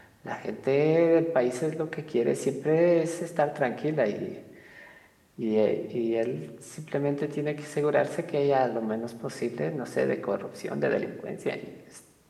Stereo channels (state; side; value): identical; both; correlation 1.00